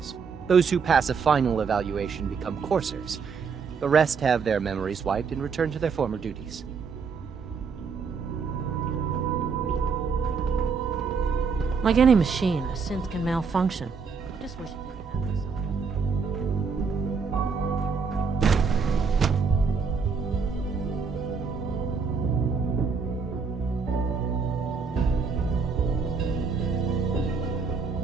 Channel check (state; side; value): quieter; left; 5.4 dB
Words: Those who pass a final evaluation become coursers. The rest have their memories wiped and return to their former duties. Like any machine, a synth can malfunction. I just wish it didn't happen so.